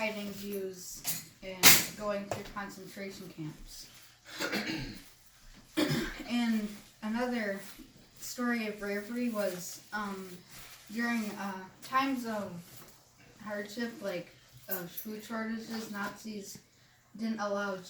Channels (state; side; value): identical; both; correlation 1.00